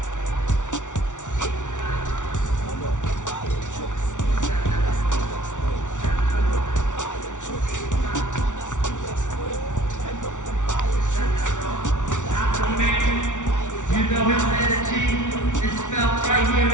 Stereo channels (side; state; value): right; late; 0.86 ms